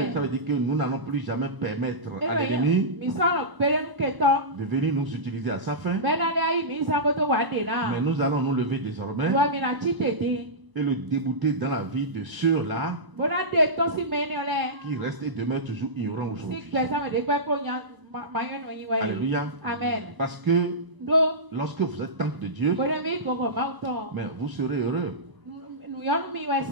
Ça veut dire que nous n'allons plus jamais permettre à l'ennemi de venir nous utiliser à sa fin, mais nous allons nous lever désormais et le débouter dans la vie de ceux-là qui restent et demeurent toujours ignorants aujourd'hui. Alléluia. Amen. Parce que lorsque vous êtes temple de Dieu, mais vous serez heureux.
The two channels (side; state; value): left; late; 1.0 ms